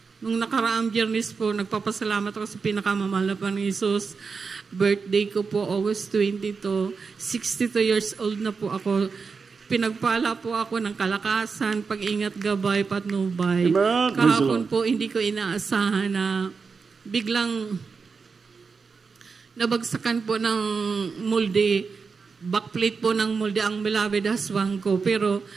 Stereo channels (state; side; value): quieter; left; 5.1 dB